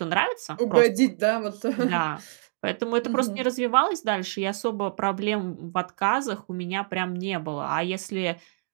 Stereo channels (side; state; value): left; silent; digital silence